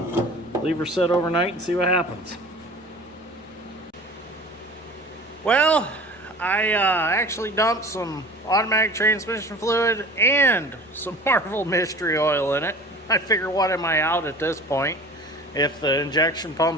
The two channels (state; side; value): normal; both; correlation 0.41